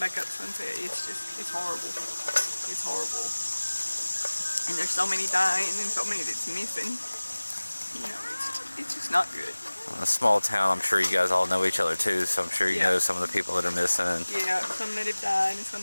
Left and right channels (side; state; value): both; inverted; correlation -1.00